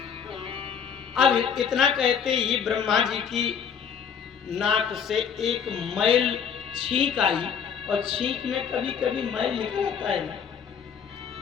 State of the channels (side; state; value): right; quieter; 7.3 dB